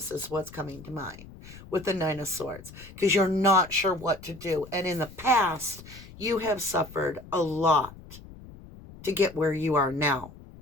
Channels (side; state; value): left; noise; rumble, 18 dB below the sound